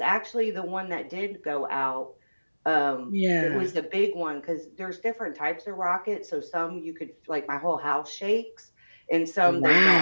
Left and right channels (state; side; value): inverted; both; correlation -1.00